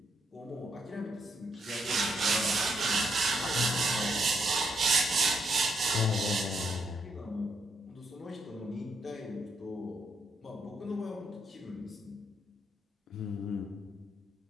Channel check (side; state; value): both; normal; correlation 0.76